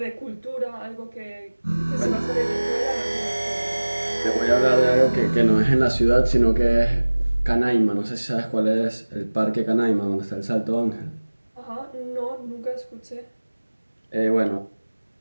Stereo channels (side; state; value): both; inverted; correlation -1.00